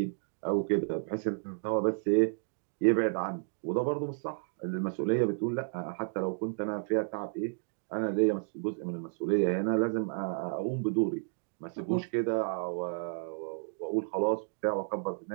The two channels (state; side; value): silent; left; digital silence